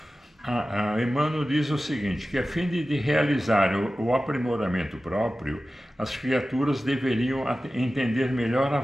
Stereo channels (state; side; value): normal; both; correlation 0.95